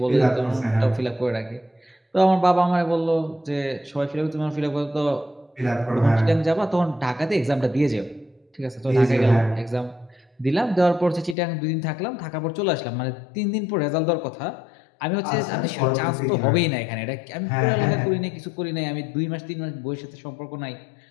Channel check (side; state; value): right; drops out; at 11.4 s